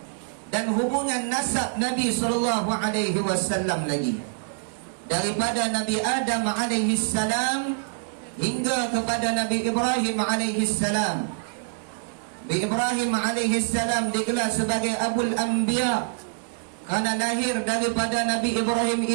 dan hubungan nasab Nabi sallallahu alaihi wasallam lagi, daripada Nabi Adam alaihi salam hingga kepada Nabi Ibrahim alaihi salam. Nabi Ibrahim alaihi salam digelar sebagai Abul Anbiya kerana lahir daripada Nabi Ibrahim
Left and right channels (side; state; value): left; silent; digital silence